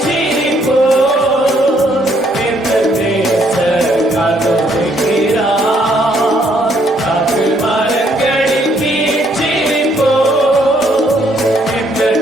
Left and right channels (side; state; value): both; normal; correlation 0.68